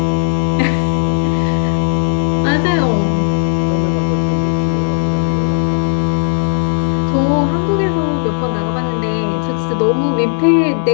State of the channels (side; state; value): right; silent; digital silence